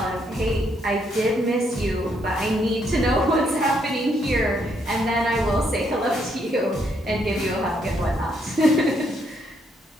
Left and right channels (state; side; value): normal; both; correlation 0.74